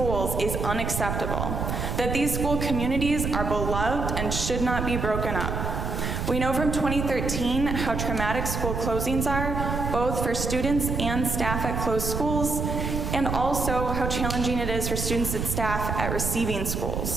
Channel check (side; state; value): right; noise; rumble, 2 dB below the sound